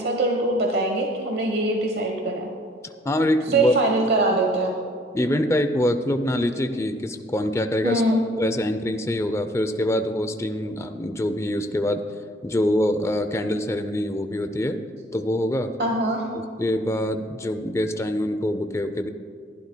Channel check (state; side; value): normal; both; correlation 0.59